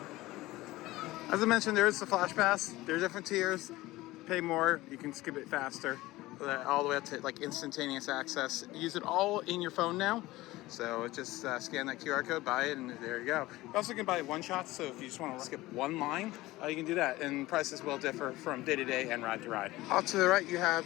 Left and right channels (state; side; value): quieter; right; 18.4 dB